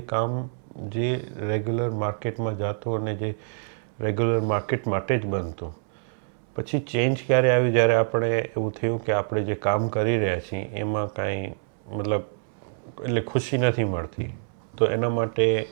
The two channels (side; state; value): left; silent; 61 dB below the other